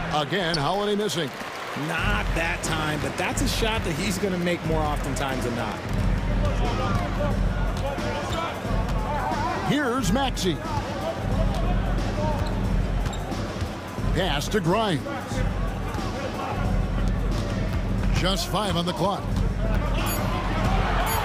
Again, Holiday missing. Not that time, but that's a shot that he's going to make more oftentimes than not. Here's Maxey. Pass to Grimes. Just 5 on the clock.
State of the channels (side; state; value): both; identical; correlation 1.00